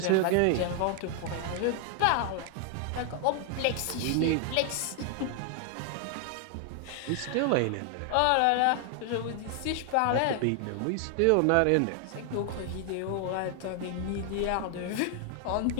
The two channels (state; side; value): different; both; correlation 0.00